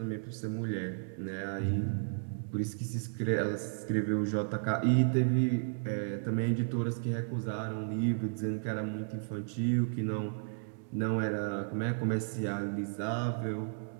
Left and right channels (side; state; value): left; silent; digital silence